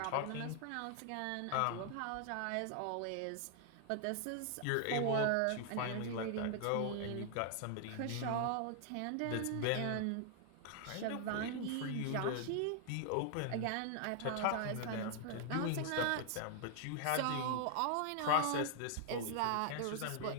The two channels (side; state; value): both; different; correlation 0.00